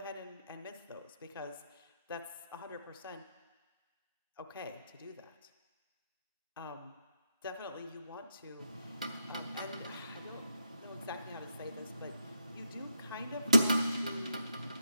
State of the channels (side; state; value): both; inverted; correlation -0.82